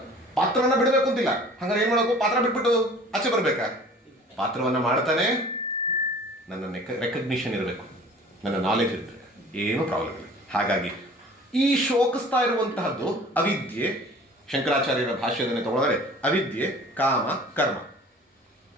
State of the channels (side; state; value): both; normal; correlation 0.46